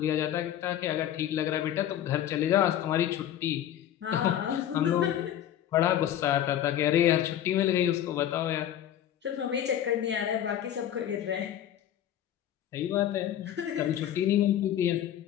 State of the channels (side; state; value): right; quieter; 11.0 dB